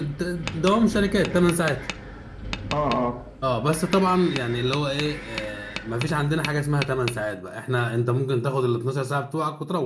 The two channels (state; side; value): identical; both; correlation 1.00